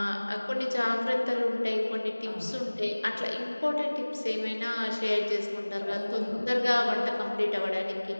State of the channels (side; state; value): both; inverted; correlation -1.00